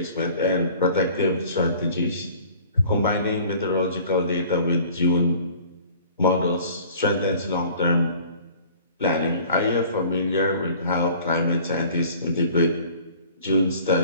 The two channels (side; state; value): both; inverted; correlation -0.49